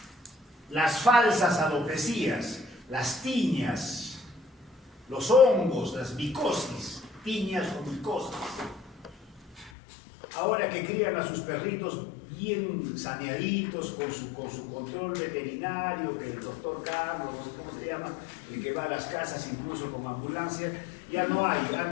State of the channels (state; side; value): drops out; right; at 9.7 s